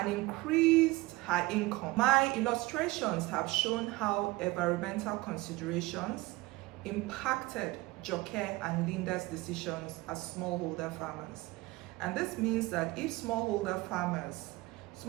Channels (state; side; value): quieter; left; 20.9 dB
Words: increased her income. My illustrations have shown how environmental considerations impacted Joke and Linda's decisions as smallholder farmers. And this means that if smallholder farmers